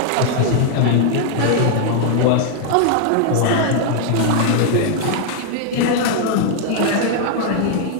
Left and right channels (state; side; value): different; both; correlation 0.00